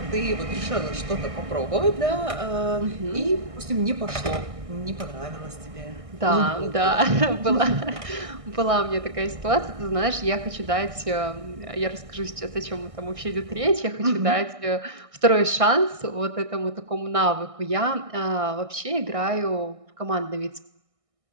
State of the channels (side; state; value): left; late; 1.6 ms